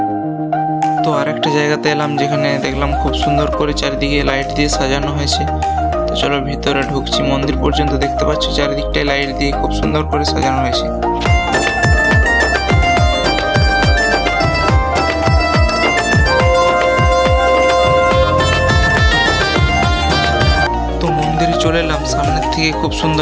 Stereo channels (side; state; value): both; identical; correlation 1.00